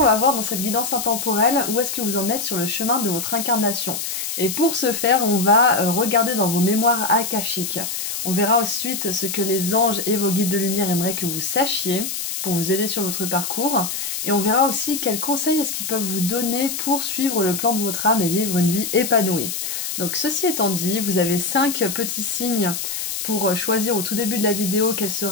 va voir dans cette guidance intemporelle où est-ce que vous en êtes sur le chemin de votre incarnation. Et pour ce faire, on va regarder dans vos mémoires akashiques. On verra ensuite ce que les anges et vos guides de lumière aimeraient que vous sachiez pour vous aider sur votre parcours. Et on verra aussi quels conseils est-ce qu'ils peuvent vous donner pour suivre le plan de votre âme et vivre une vie épanouie. Donc ceci étant dit, vous avez 5 petits signes pour choisir au tout début de la vidéo quel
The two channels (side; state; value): left; noise; hiss, 4 dB below the sound